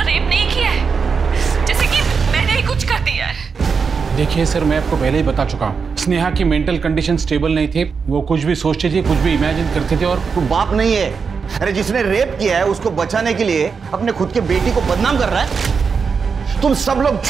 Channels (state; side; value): quieter; left; 5.6 dB